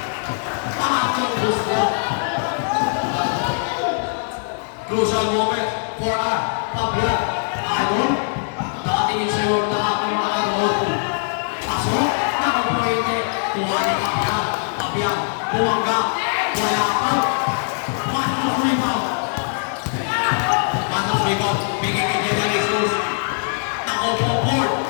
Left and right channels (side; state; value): right; silent; 65 dB below the other